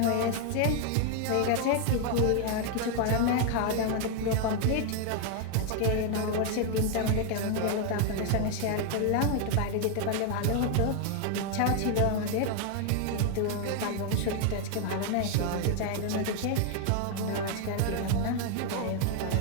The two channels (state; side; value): different; both; correlation 0.00